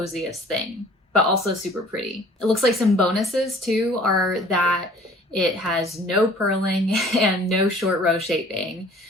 thing, but also super pretty. It looks like some bonuses too are that it has no purling and no short row shaping.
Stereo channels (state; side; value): normal; both; correlation 0.51